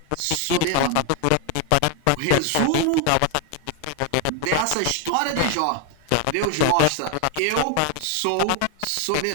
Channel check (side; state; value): both; different; correlation 0.01